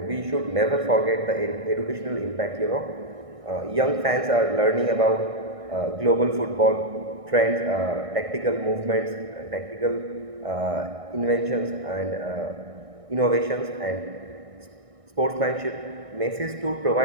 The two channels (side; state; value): left; late; 1.6 ms